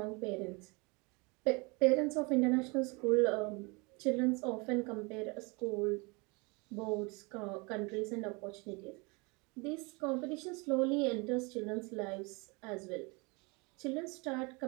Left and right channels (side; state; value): left; quieter; 28.8 dB